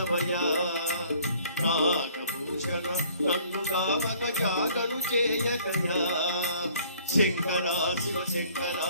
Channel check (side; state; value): both; inverted; correlation -0.56